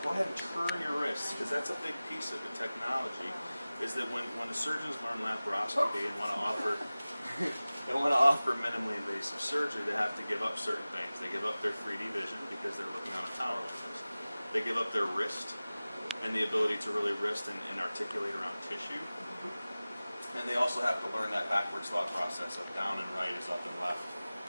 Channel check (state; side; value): inverted; both; correlation -0.98